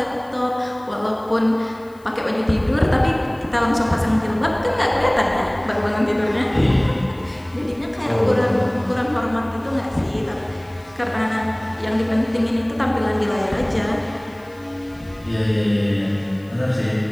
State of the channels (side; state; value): left; noise; hiss, 30 dB below the sound